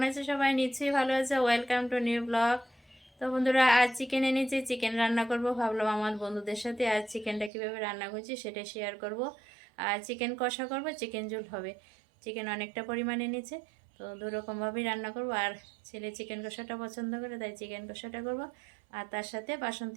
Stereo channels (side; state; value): left; drops out; at 7.5 s